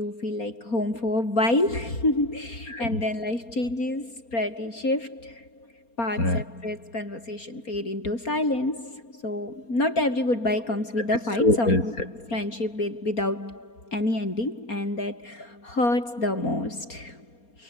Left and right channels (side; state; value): right; late; 4.3 ms